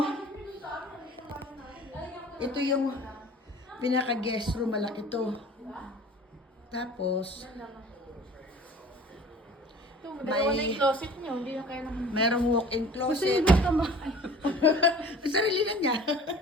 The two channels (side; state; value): both; normal; correlation 0.45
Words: ito yung pinaka-guest room, malaki to. Tapos, Dalawa na yung closet niyo, hindi na kaya naman. merong walk-in closet. Sarili na niya.